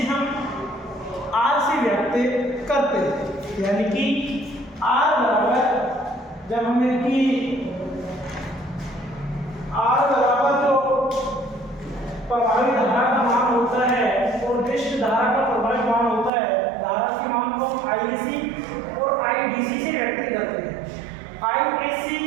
हम R से व्यक्त करते हैं। यानी कि R बराबर जब हमें कि R बराबर जो प्रभावी धारा का मान होता है और दृष्ट धारा का प्रभावी मान होता है, धारा के मान को हम IC और IDC से व्यक्त करते हैं। IAC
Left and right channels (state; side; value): drops out; left; at 16.3 s